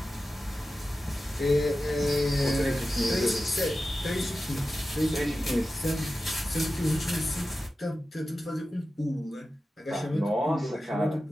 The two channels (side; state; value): both; normal; correlation 0.93